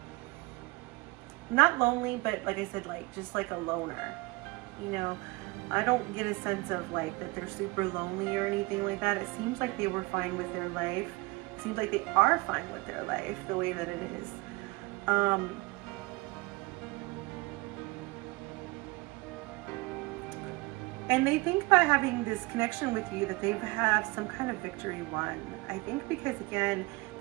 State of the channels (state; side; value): quieter; left; 24.5 dB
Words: Not lonely, but like I said, like just like a loner. You know, I don't get a sense of like that they're super lonely or anything like that. It seems like they were fine with their life. It seems like they are fine with their life the way that it is. And they think by having this connection with you that they have some kind of victory won. I think because again,